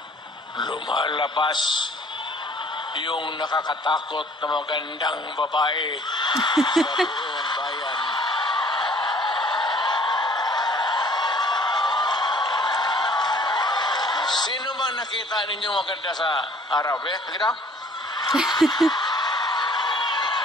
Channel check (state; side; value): normal; both; correlation 0.55